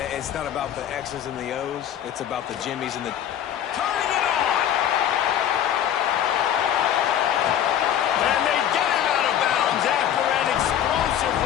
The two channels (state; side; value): quieter; right; 10.3 dB